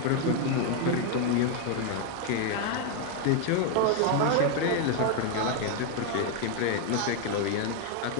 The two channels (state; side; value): different; both; correlation 0.01